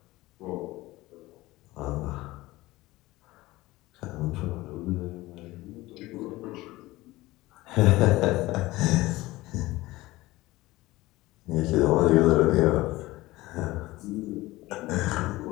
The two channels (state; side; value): quieter; right; 19.0 dB